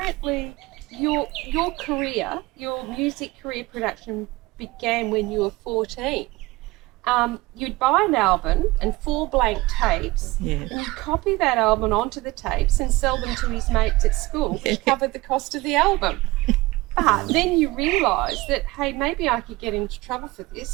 your career, your music career production began when you were 14. You'd buy an album and 4 blank tapes, Yeah. and you'd copy that album onto the tapes and sell them to his mates at school, which covered the cost of the album. But then you realise that, hey, maybe I could get into trouble for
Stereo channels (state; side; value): quieter; left; 20.8 dB